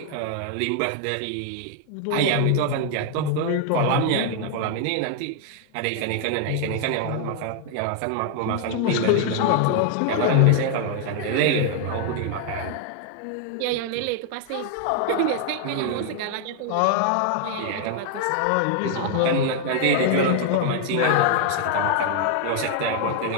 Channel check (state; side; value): different; both; correlation 0.00